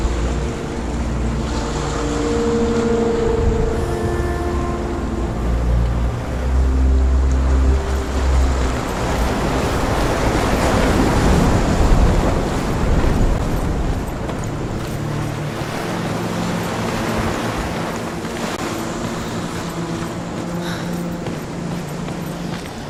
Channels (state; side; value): identical; both; correlation 1.00